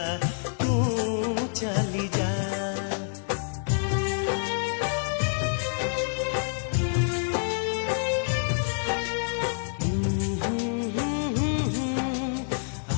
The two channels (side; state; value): right; silent; digital silence